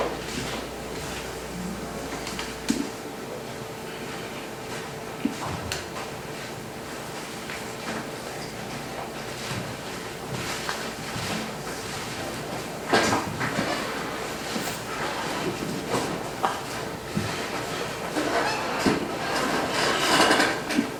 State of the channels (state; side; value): identical; both; correlation 1.00